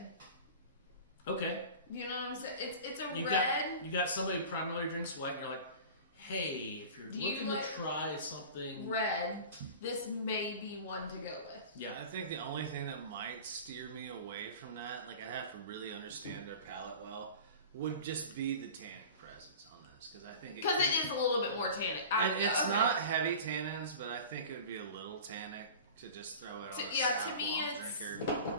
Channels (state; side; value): inverted; both; correlation -0.37